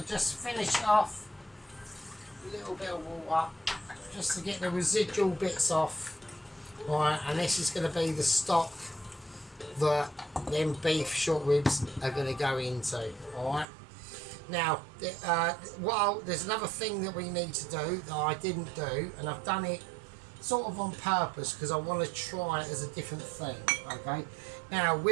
to just finish it off with a little bit of water just to get the residual bits off. Right, and this is going to be the stock that them beef short ribs are going to go into. Alright, now there's another thing that we need to do that I didn't do, and I've done it sort of on purpose because I want to try it as a different thing. Okay, now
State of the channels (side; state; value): left; drops out; at 13.7 s